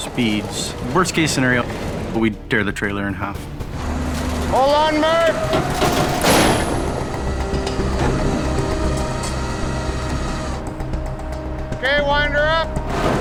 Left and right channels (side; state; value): both; identical; correlation 1.00